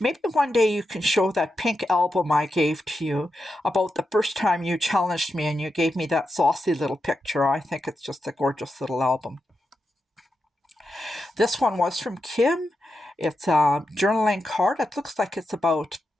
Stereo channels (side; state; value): both; normal; correlation 0.88